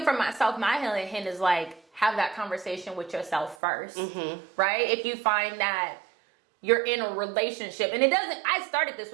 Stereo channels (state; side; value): drops out; left; at 3.6 s